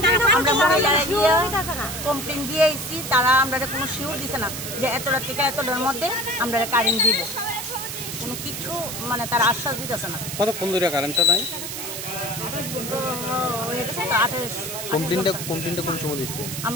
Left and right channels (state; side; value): noise; right; hiss, 6 dB below the sound